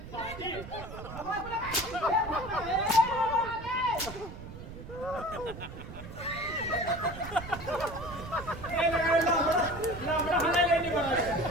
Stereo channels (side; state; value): right; noise; rumble, 12 dB below the sound